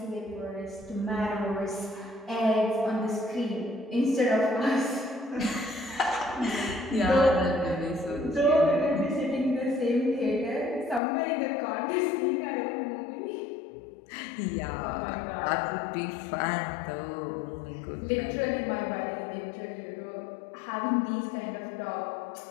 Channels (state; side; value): drops out; right; at 11.0 s